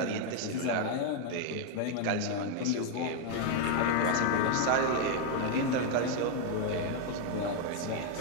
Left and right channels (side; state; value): both; different; correlation 0.00